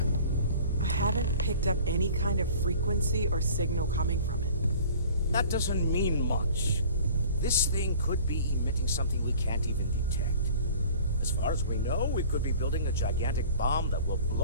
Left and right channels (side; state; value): both; inverted; correlation -0.45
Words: I haven't picked up any kind of frequency or signal coming from it. That doesn't mean much. This thing could be emitting something we can't even detect. As far as we know, we could be building a gigantic bomb that will